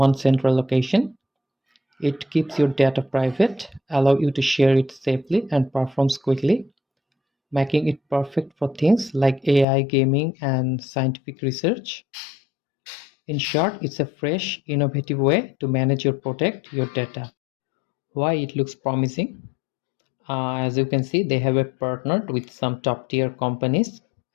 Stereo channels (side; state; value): right; drops out; at 9.7 s